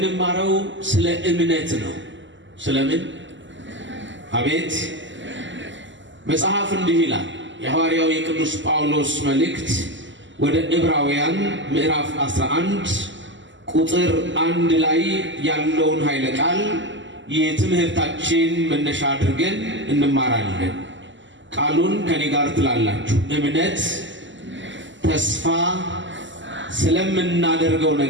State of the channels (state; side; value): late; left; 0.54 ms